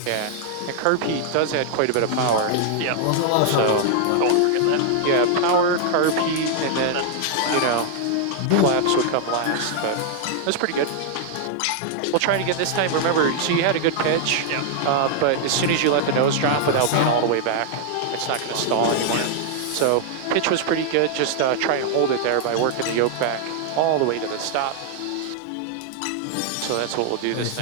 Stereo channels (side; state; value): both; different; correlation 0.00